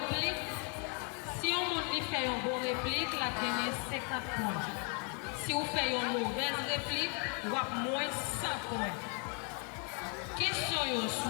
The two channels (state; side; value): quieter; right; 37.6 dB